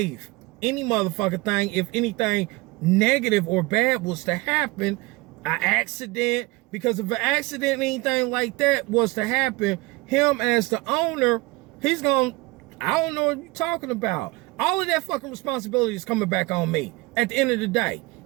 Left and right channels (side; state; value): left; quieter; 23.0 dB